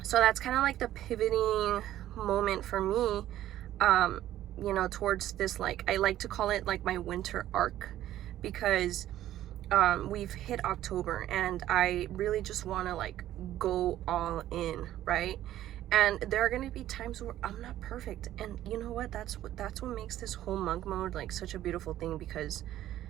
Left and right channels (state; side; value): quieter; left; 13.1 dB